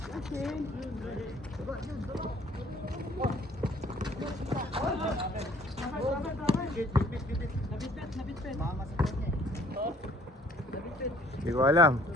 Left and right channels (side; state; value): both; normal; correlation 0.57